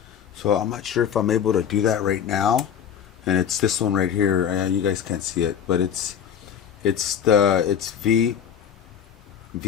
So I'm not sure if I'm able to do that right now. And it's this one right here. You guys can't see it, but it's V5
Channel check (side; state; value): right; quieter; 8.4 dB